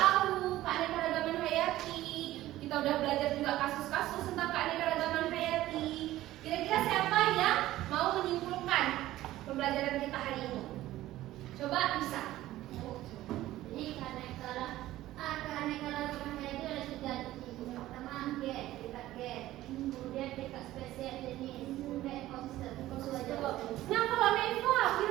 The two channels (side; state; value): left; quieter; 15.3 dB